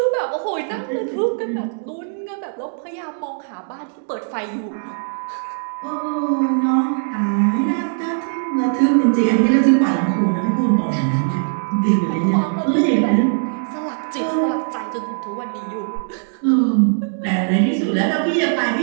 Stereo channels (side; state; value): left; silent; digital silence